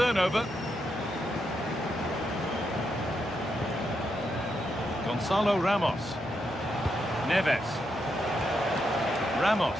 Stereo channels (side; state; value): both; normal; correlation 0.82